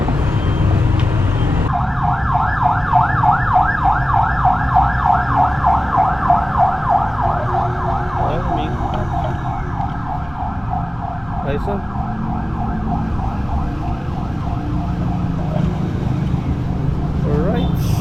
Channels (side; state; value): both; normal; correlation 0.97